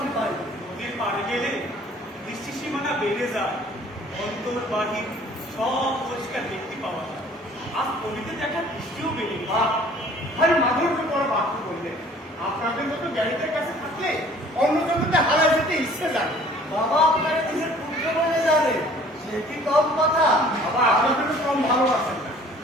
পাই। নদীর পাড়ে গেলে দৃষ্টি সীমানা বেড়ে যায়, অন্তর বাহির সব পরিষ্কার দেখতে পাওয়া যায়। আজ নদীতে দেখা দৃষ্টিও বেড়ে গেছে। ভাই মাধুর্য পরে বাক্য বললেন, আপনাদের মতো জ্ঞানীদের কাছে থাকলে অন্য জগতে হারায় যেতে ইচ্ছে জানে। বাবা আপনার নিজের পুত্র বলে জানে, সে কি কম কথা? বাবা আপনাদের কম ভালোবাসেন না।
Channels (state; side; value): normal; both; correlation 0.53